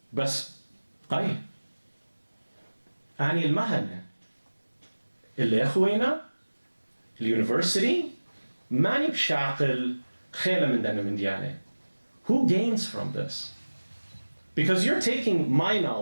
بس قاي أني المهنة اللي أخوينا اليونيفرسيتي ماني بشاقل Who gains from this? Because you're taking my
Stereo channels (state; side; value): inverted; both; correlation -1.00